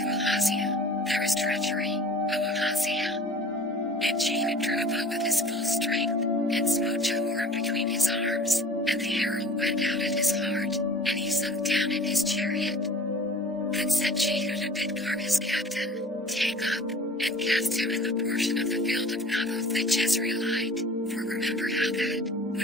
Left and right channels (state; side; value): normal; both; correlation 0.45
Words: Ahaziah, There is treachery, O Ahaziah. And Jehu drew a bow with his full strength, and smote Jehoram between his arms, and the arrow went out at his heart, and he sunk down in his chariot. Then said Jehu to Bidkar his captain, Take up, and cast him in the portion of the field of Naboth the Jezreelite, for remember how that,